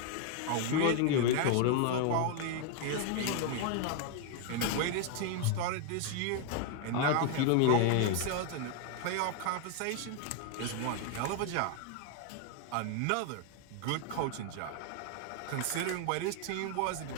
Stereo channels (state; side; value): different; both; correlation 0.00